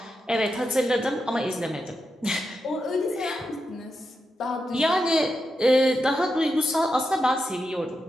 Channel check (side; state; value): both; normal; correlation 0.87